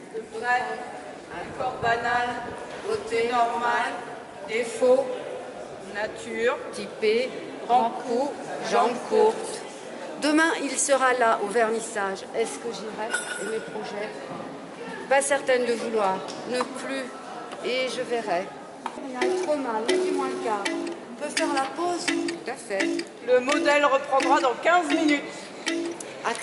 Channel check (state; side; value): identical; both; correlation 1.00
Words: De près, un corps banal, beauté normale, défaut, nature, Typé, grand cou, jambes courtes. Demain, il sera là au vernissage. Est-ce que j'irai et mes projets? Pas certaine de vouloir, ne plus, et je verrai. Il a trop mal, mais du moins le quart. On peut faire la pause? Tout à fait. le modèle reprendra dans 15 minutes.